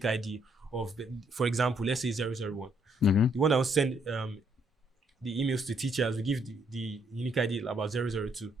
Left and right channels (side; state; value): both; normal; correlation 0.70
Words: ID of, for example, let's say 001. The one that wants to send the emails to teachers, we give the unique ID about 002,